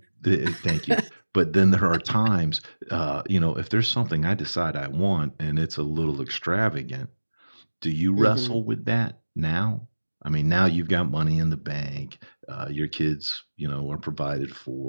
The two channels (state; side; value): inverted; both; correlation -1.00